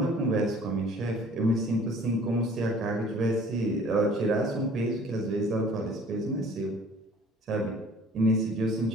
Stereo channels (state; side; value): normal; both; correlation 0.51